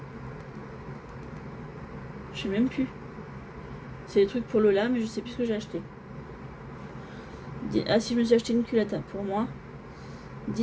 Je sais même plus. C'est des trucs pour Lola, mais je sais plus ce que j'ai acheté. Ah si, je me suis acheté une culotte pour moi.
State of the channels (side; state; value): both; identical; correlation 1.00